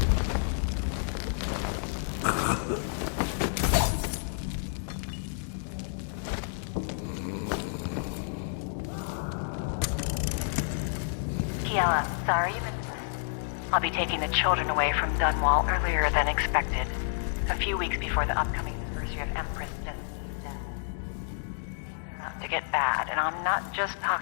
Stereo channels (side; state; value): right; silent; digital silence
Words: Kiela, sorry you missed us. I'll be taking the children away from Dunwall earlier than expected. A few weeks before the upcoming anniversary of Empress Jessamine's death. Things are about to get bad, and I'm not just